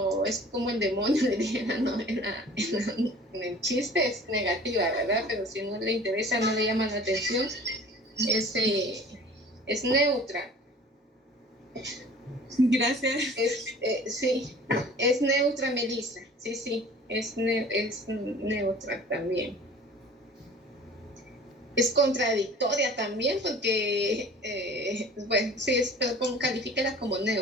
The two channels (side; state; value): both; normal; correlation 0.46